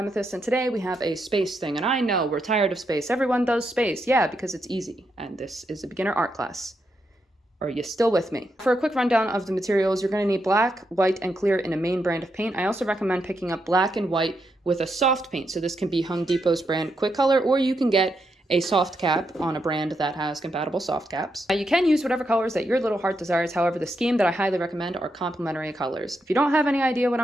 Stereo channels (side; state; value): both; normal; correlation 0.82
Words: and today we have a space thing. And I know we're tired of space. Everyone does space. Yeah, because it's easy. And this is a beginner art class. Are you still with me? For a quick rundown of the materials, you're going to need black, white, and clear in a main brand of paint. I also recommend picking up black and white with a soft paint. So this can be Home Depot's brand Quick Color, or you can get a soft cap on a brand that has compatible soft caps. You can use whatever colors that your little heart desires. However, the scheme that I highly recommend are complementary colors. If you don't have any idea what